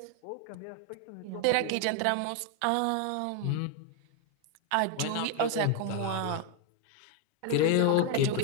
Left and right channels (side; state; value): both; different; correlation 0.01